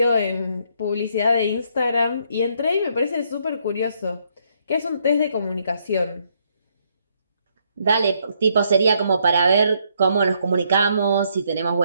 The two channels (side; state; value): both; inverted; correlation -0.72